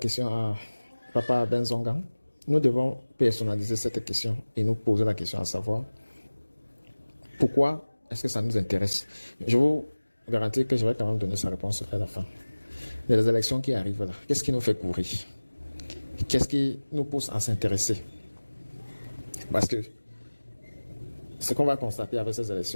à Papa Ben Zongan, nous devons personnaliser cette question et nous poser la question à savoir pourquoi est-ce que ça nous intéresse. Je vous garantis que je vais quand même donner sa réponse à la fin. Les élections qui arrivent là, qu'est-ce qui nous fait courir? Qu'est-ce qui nous pousse à s'intéresser? Parce que ce qu'on va constater avec ces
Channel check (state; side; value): inverted; both; correlation -1.00